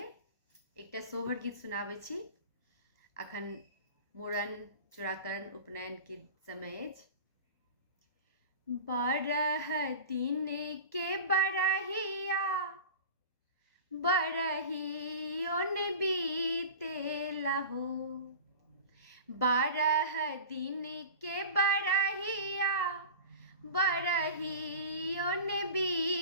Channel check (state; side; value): inverted; both; correlation -0.34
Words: एकटा सोहर गीत सुनाबै छी। अखन मूड़न, चूड़ाकरण, उपनयन के समय अछि। 12 दिन के बरहिया बरहियोन बीतेला हो। 12 दिन के बरहिया बरहियोन